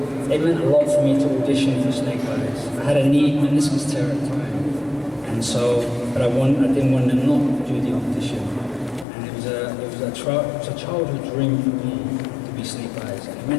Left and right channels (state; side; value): drops out; right; at 9.1 s